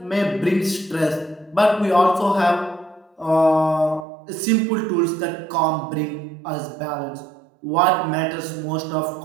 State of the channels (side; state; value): left; drops out; at 4.0 s